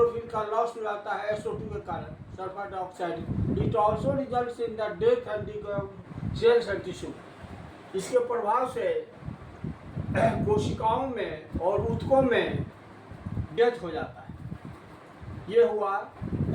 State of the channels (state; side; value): identical; both; correlation 1.00